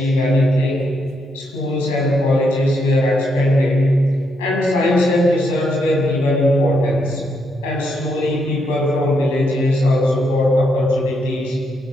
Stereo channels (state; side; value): normal; both; correlation 0.78